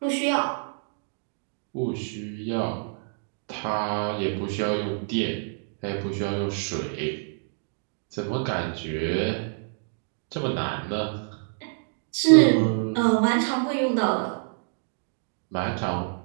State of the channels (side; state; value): left; silent; digital silence